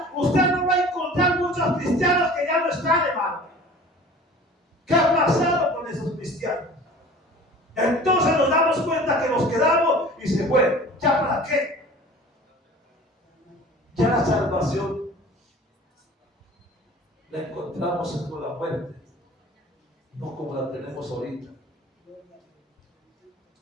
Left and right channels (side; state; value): both; normal; correlation 0.44